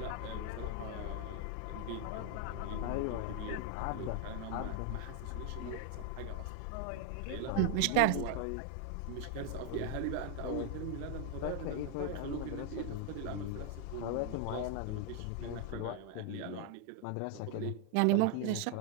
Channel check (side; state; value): both; different; correlation 0.00